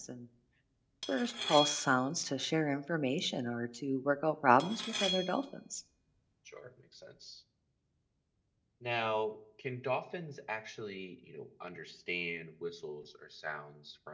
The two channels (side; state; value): both; identical; correlation 1.00